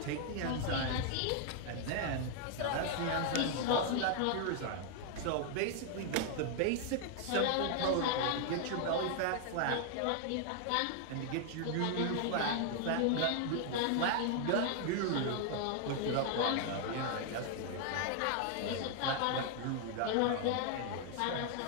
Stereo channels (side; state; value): both; different; correlation 0.00